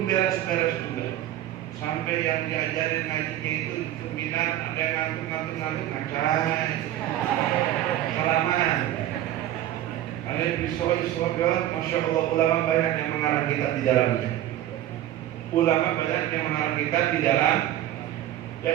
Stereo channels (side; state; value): left; quieter; 13.0 dB